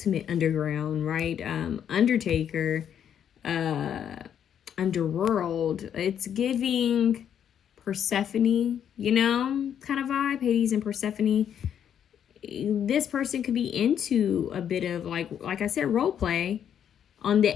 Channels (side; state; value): right; quieter; 9.0 dB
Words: underground, right? Undertaker, underworld. It's giving Persephone, kind of vibe. Hades and Persephone. This person could be into a bit of like I said, role play on the